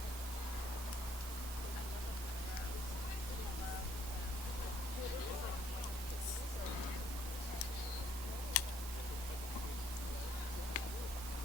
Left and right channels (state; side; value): normal; both; correlation 0.66